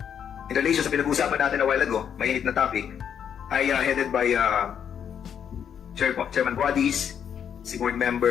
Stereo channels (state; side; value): quieter; right; 8.3 dB